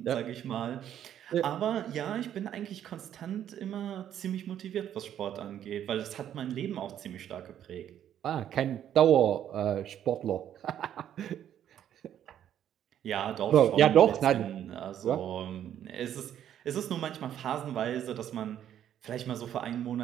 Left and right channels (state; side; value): quieter; left; 10.4 dB